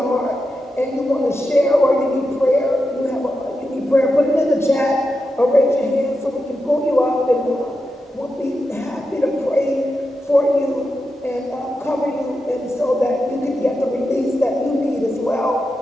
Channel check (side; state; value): both; normal; correlation 0.88